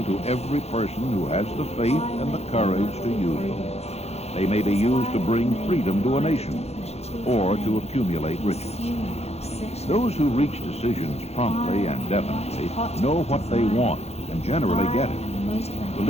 to every person who has the faith and the courage to use them. They may be used to bring freedom to a nation, or to accumulate riches. Those who reach decisions promptly and definitely know what they want and generally get it.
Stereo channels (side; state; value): right; late; 0.31 ms